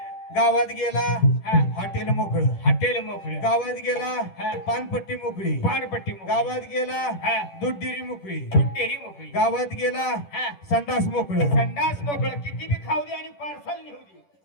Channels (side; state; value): right; late; 10 ms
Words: गावात गेला हॉटेल मोकळ हॉटेल मोकळं गावात गेला पानपट्टी मोकळी पानपट्टी गावात गेला दूध डेअरी मोकळी डेअरी मोकळी गावात गेला संडास मोकळ संडास मोकळं किती बी खाऊ दे आणि पार्सल नेऊ दे